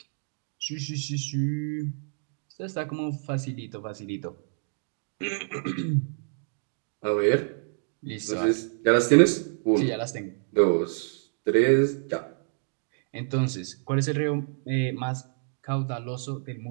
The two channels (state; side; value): silent; left; digital silence